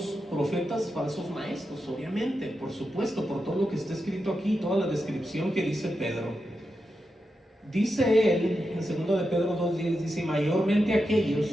profetas, falsos maestros, obviamente, por supuesto, por todo lo que está escrito aquí, toda la descripción que dice Pedro. Dice él, en 2 de Pedro 2:10, dice, mayormente aquellos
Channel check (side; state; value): both; normal; correlation 0.88